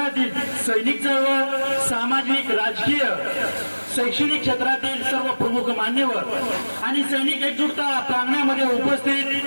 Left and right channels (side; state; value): both; inverted; correlation -1.00